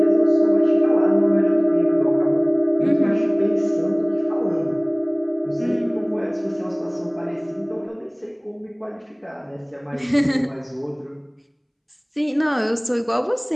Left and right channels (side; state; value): both; identical; correlation 1.00